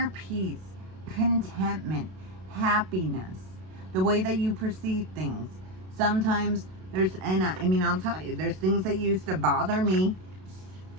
peace, contentment, happiness, the way that you perceive things. Sometimes there's, and I mean, I'll tell you, there's things that used to bother me,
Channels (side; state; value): left; late; 32 ms